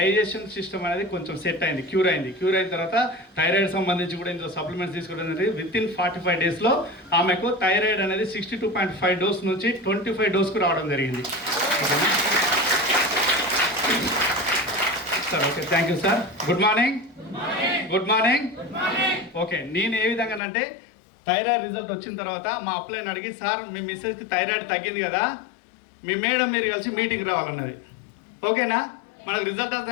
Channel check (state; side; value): drops out; right; at 20.4 s